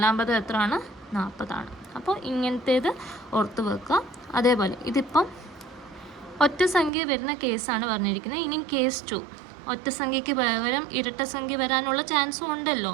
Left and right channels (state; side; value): drops out; left; at 6.9 s